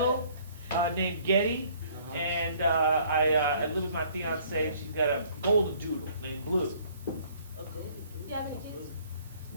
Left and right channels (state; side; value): inverted; both; correlation -0.58